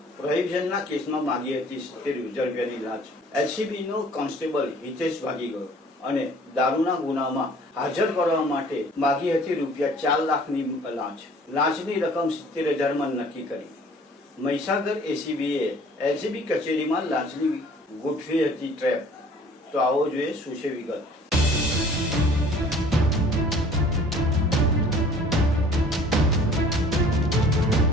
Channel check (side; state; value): both; normal; correlation 0.52